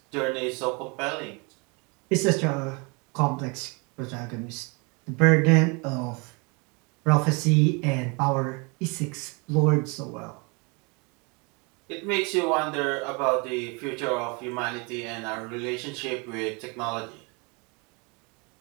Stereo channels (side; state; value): left; quieter; 30.5 dB